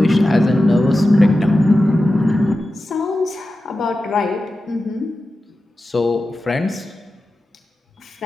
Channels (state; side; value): normal; both; correlation 0.93